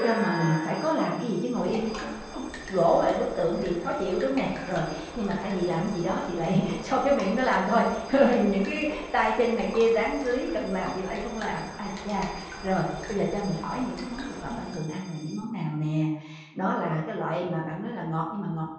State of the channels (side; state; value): both; identical; correlation 1.00